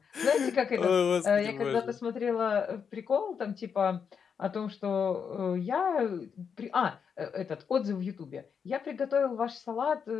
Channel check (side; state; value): right; quieter; 6.7 dB